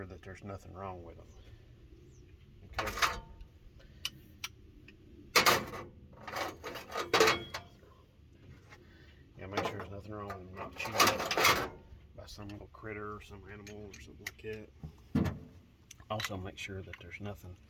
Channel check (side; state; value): both; identical; correlation 1.00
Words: that there's nothing wrong with them. Okay. Yeah, make sure there's nothing wrong with them, not chewed up by some little critter or some animal or something like that. Also, make sure that there's nothing